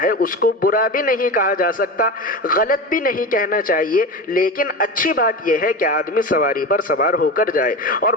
ہے، اس کو برا بھی نہیں کہا جا سکتا، غلط بھی نہیں کہنا چاہیے، لیکن اچھی بات یہ ہے کہ آدمی سواری پر سوار ہو کر جائے۔ اور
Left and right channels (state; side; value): normal; both; correlation 0.26